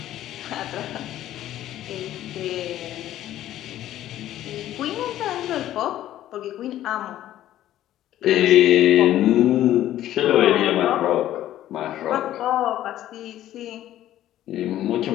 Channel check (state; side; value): quieter; right; 13.0 dB